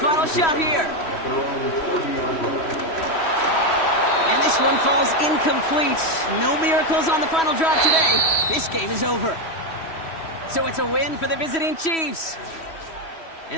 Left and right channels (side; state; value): right; late; 3.1 ms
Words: shot here. And this one falls incomplete. No miracles on the final drive today. This game is over. So it's a win for the visiting Chiefs.